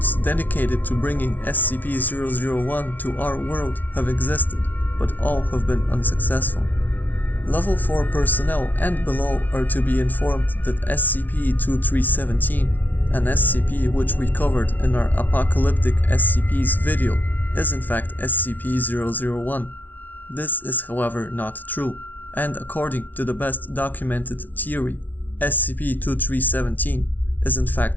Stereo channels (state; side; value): late; right; 0.080 ms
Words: dedicated to bringing SCP-001 to our world have existed, but all have been unsuccessful. Level 4 personnel and below are to be informed that SCP-2317, an SCP which we covered in our Apocalyptic SCPs video, is in fact SCP-001. This is however not true, and according to the best documented theory, SCP-2317 is in